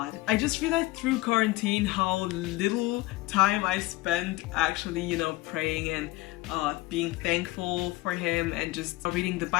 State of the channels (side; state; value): right; quieter; 19.8 dB